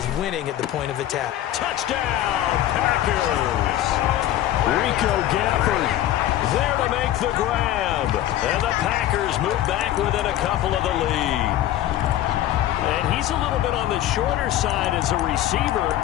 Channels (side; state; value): right; quieter; 13.1 dB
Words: winning at the point of attack. Touchdown, Packers! Rico Gafford there to make the grab. And the Packers move back within a couple of the lead. And he's a little bit on the shorter side as a receiver.